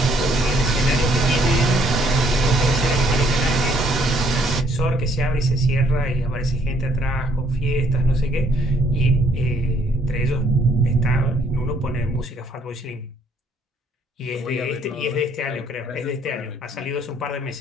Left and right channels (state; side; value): normal; both; correlation 0.66